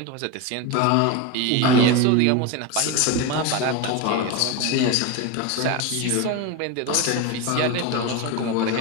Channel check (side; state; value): both; different; correlation 0.04